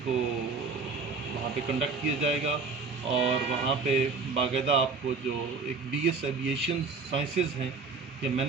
کو وہاں پہ کنڈکٹ کیا جائے گا. اور وہاں پہ باقاعدہ آپ کو جو ایک بی ایس ایویشن سائنسز ہیں یا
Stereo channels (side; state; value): left; quieter; 4.4 dB